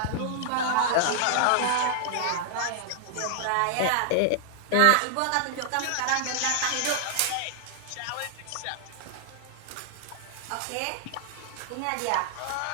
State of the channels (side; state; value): both; different; correlation -0.01